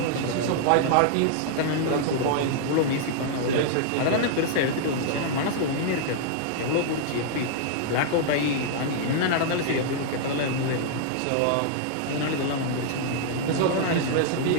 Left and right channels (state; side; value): different; both; correlation -0.01